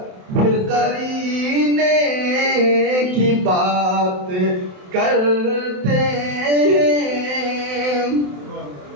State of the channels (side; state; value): left; late; 27 ms